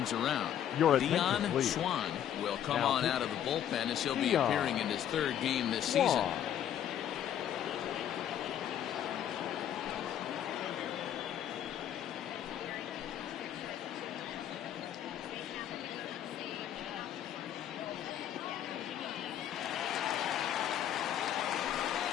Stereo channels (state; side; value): quieter; right; 10.4 dB